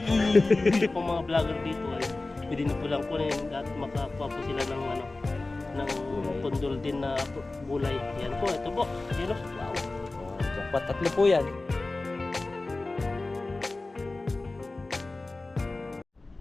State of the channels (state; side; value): quieter; right; 3.2 dB